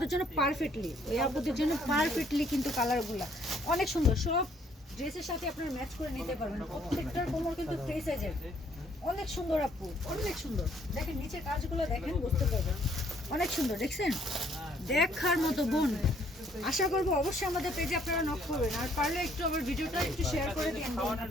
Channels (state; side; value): normal; both; correlation 0.65